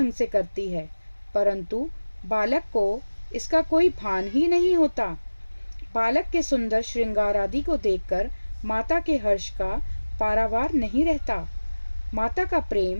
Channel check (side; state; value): both; inverted; correlation -1.00